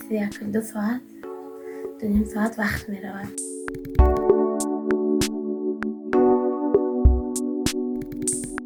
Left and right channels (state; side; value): identical; both; correlation 1.00